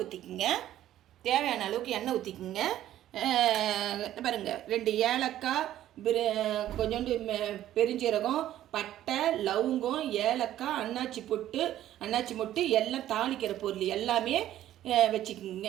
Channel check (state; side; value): quieter; left; 12.7 dB